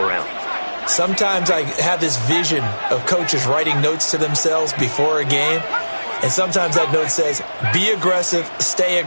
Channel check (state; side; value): inverted; both; correlation -1.00